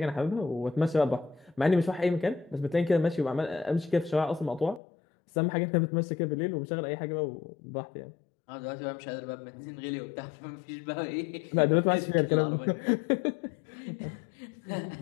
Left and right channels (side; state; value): right; drops out; at 4.8 s